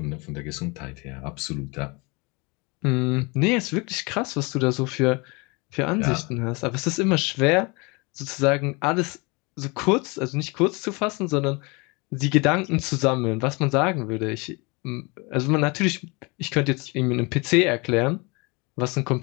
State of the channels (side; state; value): right; quieter; 27.9 dB